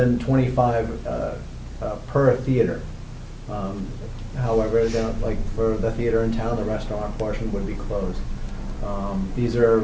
25 per theater. However, like for the theater in town, the restaurant portion would be closed. These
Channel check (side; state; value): both; identical; correlation 1.00